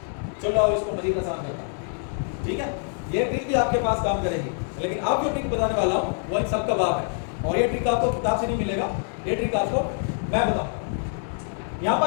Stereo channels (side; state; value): right; silent; 58 dB below the other